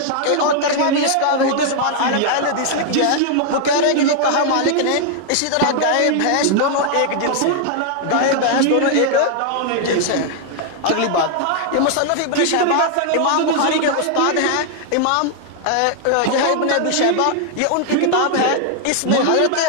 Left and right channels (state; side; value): different; both; correlation 0.00